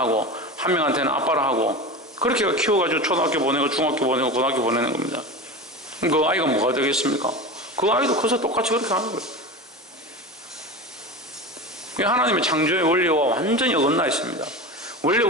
한 명한테는 아빠라 하고 그렇게 키워가지고 초등학교 보내고 중학교 보내고 고등학교 보내는 겁니다. 그 아이가 뭐가 되겠습니까? 그 아이도 커서 똑같이 그렇게 하는 거예요. 하나님의 창조의 원리와 완전히 어긋나 있습니다. 원래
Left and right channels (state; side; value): normal; both; correlation 0.27